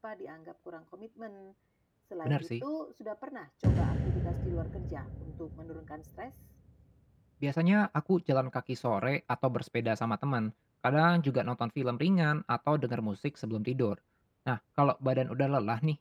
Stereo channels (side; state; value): both; identical; correlation 1.00